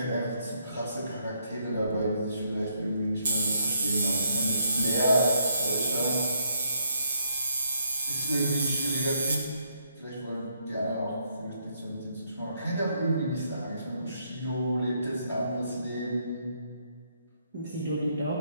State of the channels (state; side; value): inverted; both; correlation -0.73